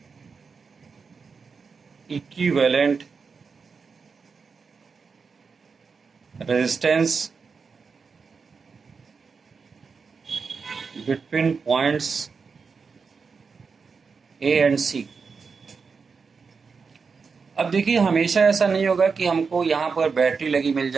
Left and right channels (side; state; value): left; quieter; 5.2 dB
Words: equivalent resistance between points A and C। अब देखिए, हमेशा ऐसा नहीं होगा कि हमको यहाँ पर बैटरी लगी मिल